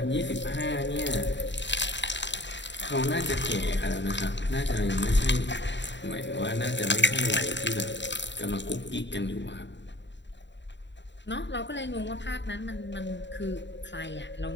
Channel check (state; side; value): late; right; 0.52 ms